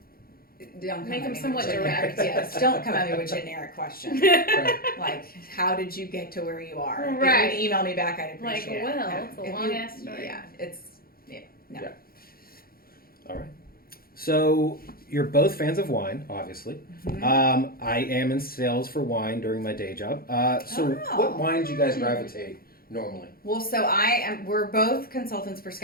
Don't come Make at them me somewhat with direct. Yes, don't come at me with generic questions. Right. Like, how did you get to where you are? Right. If you email me back, I'd Like, appreciate it. well, No. it's a If long you- ass story. Yeah, no. Yeah. All right. So you're both fans of wine, obviously. I am in sales for wine during my day job. So Oh. what wines do you guys gravitate normally? Well, so we're both consultants for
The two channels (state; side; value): late; right; 0.43 ms